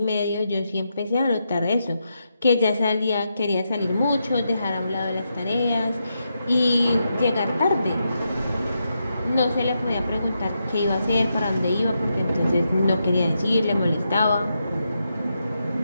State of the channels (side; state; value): both; inverted; correlation -0.84